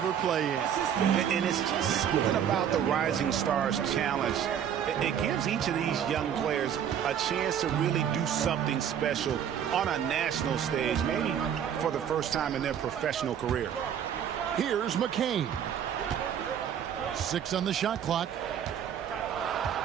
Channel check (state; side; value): quieter; left; 8.9 dB